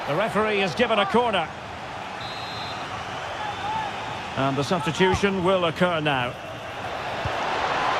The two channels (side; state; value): both; identical; correlation 1.00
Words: The referee has given a corner. And the substitution will occur now.